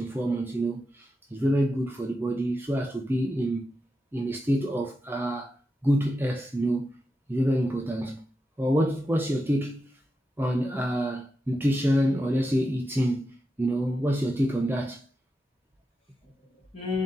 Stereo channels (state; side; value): normal; both; correlation 0.88